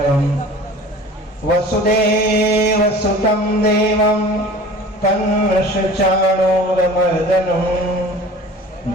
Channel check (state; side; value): normal; both; correlation 0.43